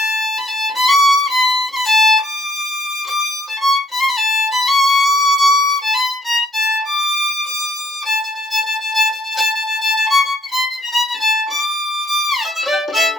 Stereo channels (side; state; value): both; normal; correlation 0.66